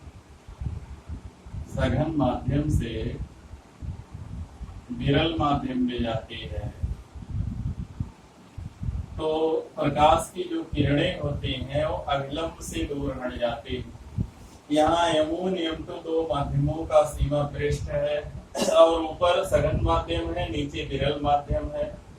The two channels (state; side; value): identical; both; correlation 1.00